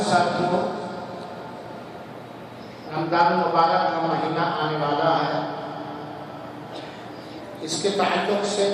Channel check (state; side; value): identical; both; correlation 1.00